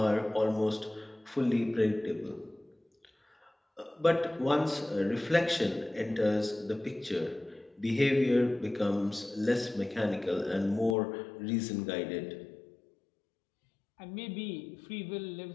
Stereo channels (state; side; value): drops out; right; at 11.0 s